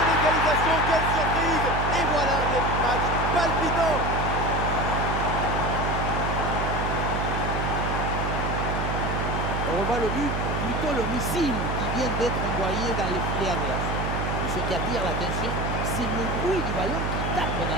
Quelle surprise! Et voilà un début de match palpitant! On revoit le but, plutôt le missile qui vient d'être envoyé dans les filets adverses. Et ce qui attire l'attention, c'est le bruit du ballon qui tape dans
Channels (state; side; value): noise; right; hum, 2 dB below the sound